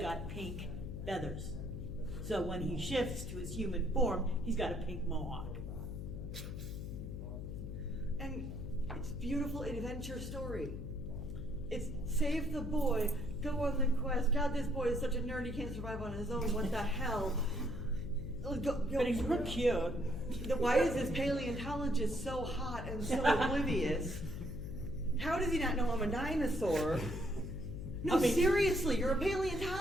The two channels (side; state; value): left; noise; hum, 6 dB below the sound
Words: pink feathers. So when he shifts to his human form, he's got a pink mohawk. And it's beautiful adventure story. It's save the boy, go on the quest. God, this boy is such a nerd, he can't survive on his own. What the hell? But he's real cute. Why is this paleontologist so hot and so oblivious? How does he not know I'm a dinosaur? No, I mean- seriously, you're a